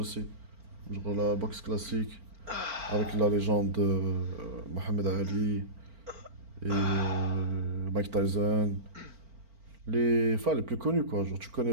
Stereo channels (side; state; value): left; late; 4.4 ms